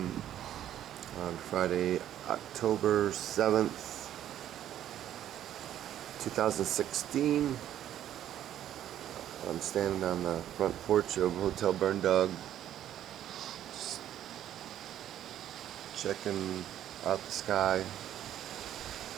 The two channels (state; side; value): quieter; left; 11.4 dB